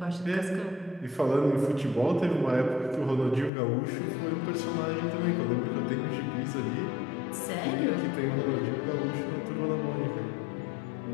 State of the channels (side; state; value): right; drops out; at 3.5 s